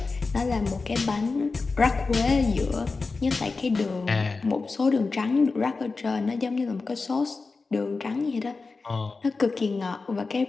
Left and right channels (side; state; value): right; quieter; 4.1 dB